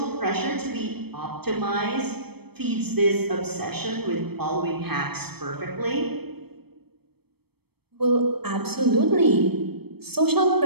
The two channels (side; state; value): left; late; 0.97 ms